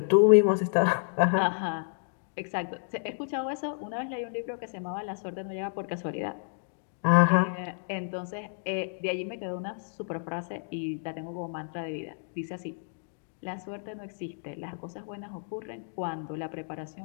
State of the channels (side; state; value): right; silent; digital silence